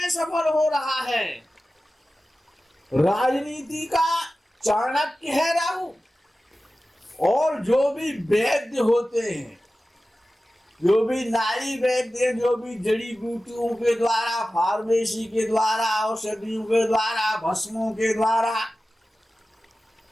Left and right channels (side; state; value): both; normal; correlation 0.95